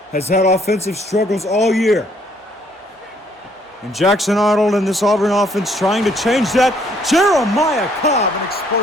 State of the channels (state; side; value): normal; both; correlation 0.66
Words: has had offensive struggles all year. And Jackson Arnold and this Auburn offense trying to change that. Jeremiah Cobb, an